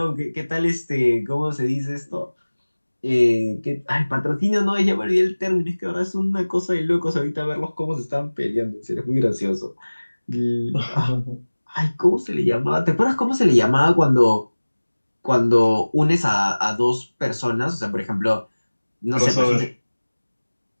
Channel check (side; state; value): both; inverted; correlation -1.00